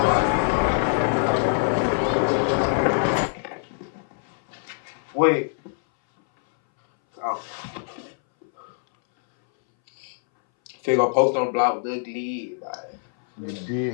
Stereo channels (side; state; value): right; silent; 61 dB below the other